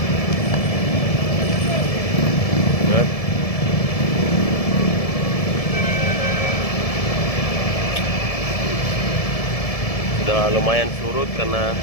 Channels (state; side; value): late; right; 1.7 ms